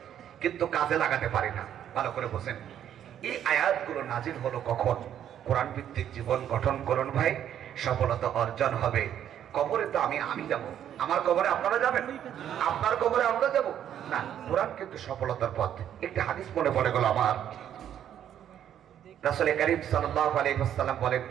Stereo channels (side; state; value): left; quieter; 10.1 dB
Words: কিন্তু কাজে লাগাতে পারি না। ভালো করে বোঝেন। এই আয়াতগুলো নাজিল হলো কখন? কোরআন ভিত্তিক জীবন গঠন করুন ভাই, সফলতা অর্জন হবে। কবরে তো আমি যাব, আমার কবরে আপনারা যাবেন, আপনার কবরে আমরা যাব না। কোরআন কিন্তু সফলতার পথ। একটি হাদিস মনে পড়ে গেল আমার। রাসূল কারীম সাল্লাল্লাহু আলাইহি ওয়াসাল্লাম বলেন,